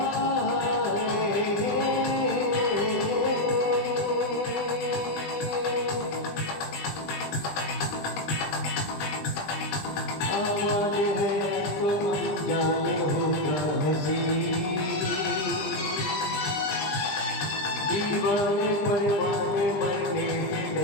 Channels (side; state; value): right; late; 20 ms